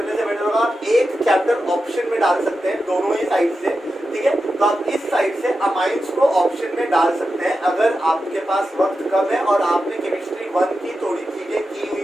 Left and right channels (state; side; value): normal; both; correlation 0.90